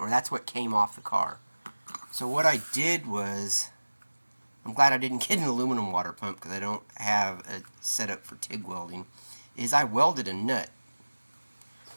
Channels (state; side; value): inverted; both; correlation -1.00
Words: that's what came off the car. So what I did was, I'm glad I didn't get an aluminum water pump because I don't have a setup for TIG welding, is I welded a nut